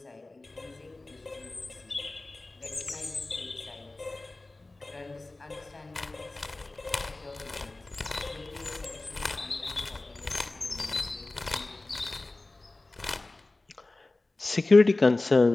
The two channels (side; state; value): right; quieter; 3.0 dB